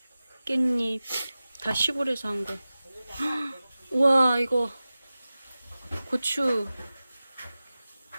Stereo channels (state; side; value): inverted; both; correlation -0.96